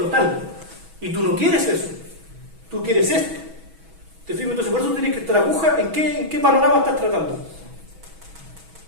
Y tú no quieres eso, tú quieres esto. ¿Te fijas? Entonces por eso tienes que estar aguja en qué panorama estás tratando.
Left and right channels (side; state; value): left; late; 6.2 ms